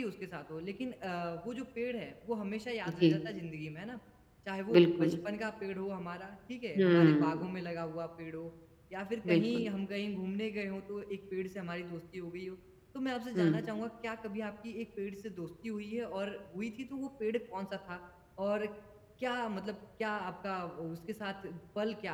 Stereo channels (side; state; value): both; identical; correlation 1.00